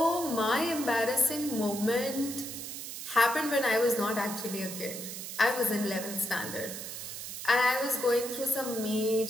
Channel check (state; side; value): noise; right; hiss, 8 dB below the sound